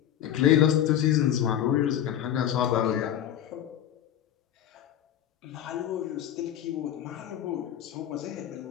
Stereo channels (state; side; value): quieter; right; 10.7 dB